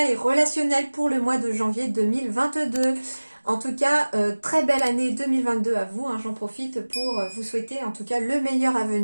et relationnelle pour le mois de janvier 2022. En tout cas, très belle année 2022 à vous. J'en profite pour vous souhaiter en tout cas le meilleur à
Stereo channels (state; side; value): inverted; both; correlation -1.00